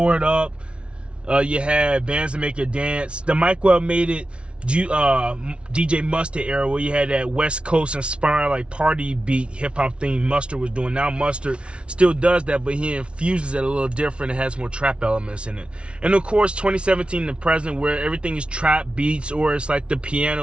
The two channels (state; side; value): late; left; 0.059 ms